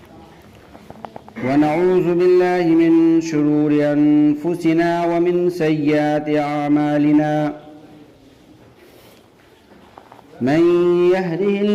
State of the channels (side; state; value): both; identical; correlation 1.00